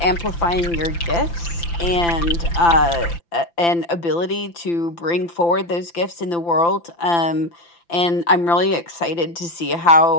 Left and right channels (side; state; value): right; late; 5.9 ms